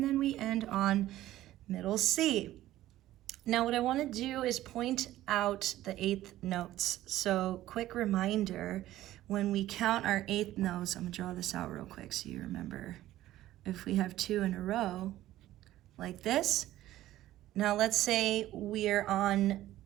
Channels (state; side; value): quieter; left; 14.5 dB